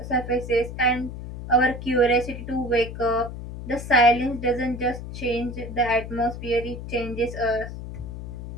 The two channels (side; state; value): left; noise; hum, 9 dB below the sound